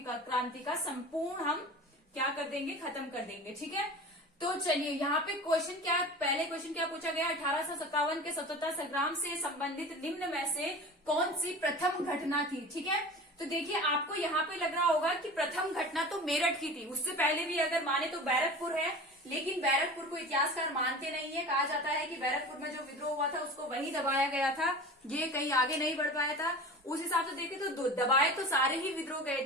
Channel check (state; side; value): normal; both; correlation 0.36